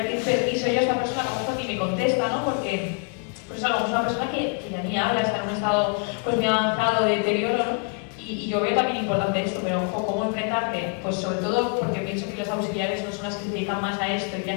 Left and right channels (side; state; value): right; quieter; 36.4 dB